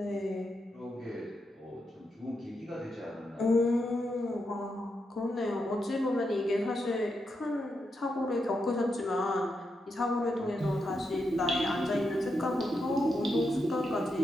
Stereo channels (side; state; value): both; normal; correlation 0.84